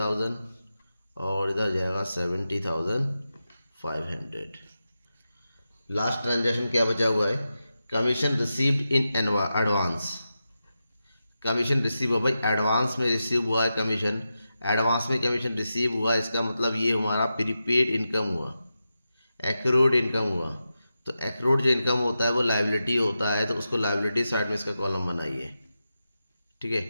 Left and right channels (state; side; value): inverted; both; correlation -0.90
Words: और इधर जाएगा 70,500। लास्ट ट्रांजेक्शन क्या बचा हुआ है, commission received in advance. Commission receive हुआ भाई, एडवांस में रिसीव हुआ है कमीशन, एडवांस में कमीशन रिसीव हुआ, इसका मतलब ये हमारा प्रीपेड इनकम हुआ, एक्रूड इनकम हुआ। तो एक्रूड जो इनकम होता है वो लायबिलिटी होता है, तो उसको लायबिलिटी साइड में इसका कॉलम बनाइए। ठीक है,